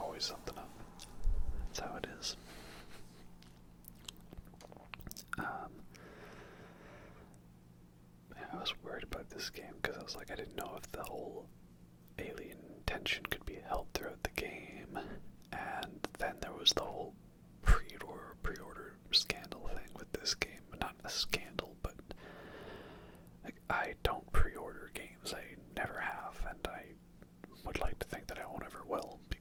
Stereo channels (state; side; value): identical; both; correlation 1.00